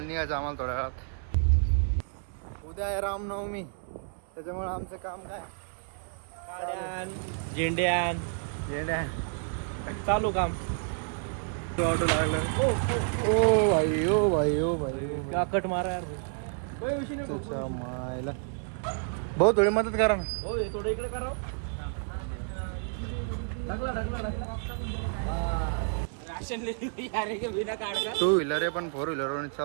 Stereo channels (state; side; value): silent; left; 58 dB below the other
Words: आम्हाला थोड्या वेळात. उद्या आहे रामनवमी, त्याच्यामुळे आमचं काम काय झेंड्यान येड्या चालू काम. ऑटो लागलं. ओ भाई ओ भाई ओ भाई काकट मारा यार. त्याच्या मायला भाऊ थोडी मदत करा ना. थोडं इकडे करा. टू व्हीलर आहे पण 4 व्हीलर